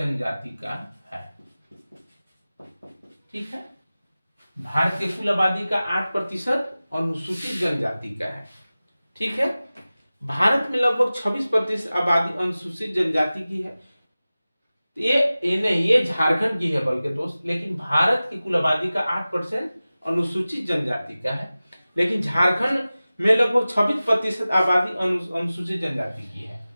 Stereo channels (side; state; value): both; inverted; correlation -0.97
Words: का है। ठीक है, भारत के कुल आबादी का 8% अनुसूचित जनजाति का है। ठीक है, भारत में लगभग 26% आबादी अनुसूचित जनजाति की है। ये नहीं, ये झारखंड की है बल्कि दोस्त, लेकिन भारत की कुल आबादी का 8% अनुसूचित जनजाति का है, लेकिन झारखंड में लगभग 26% आबादी अनुसूचित जनजाति की है।